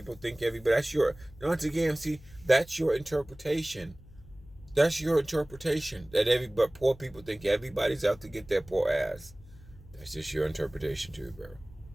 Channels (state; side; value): noise; left; hum, 21 dB below the sound